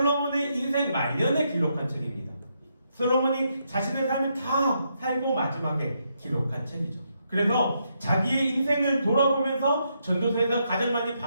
인생 말년에 기록한 책입니다. 솔로몬이 자신의 삶을 다 살고 마지막에 기록한 책이죠. 그래서 자기의 인생을 돌아보면서 전도서에서 가장 많이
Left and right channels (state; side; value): inverted; both; correlation -0.79